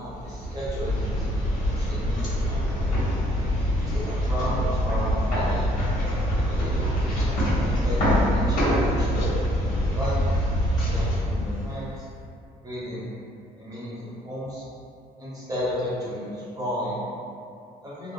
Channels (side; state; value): both; normal; correlation 0.65